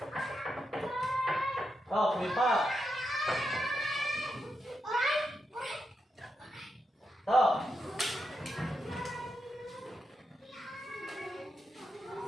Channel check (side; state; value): both; normal; correlation 0.85